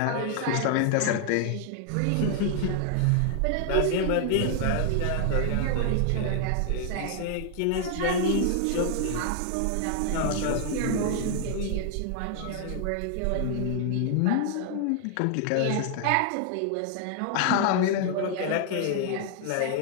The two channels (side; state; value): both; different; correlation 0.00